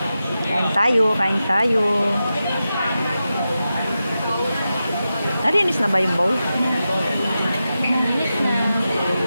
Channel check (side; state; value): both; inverted; correlation -0.91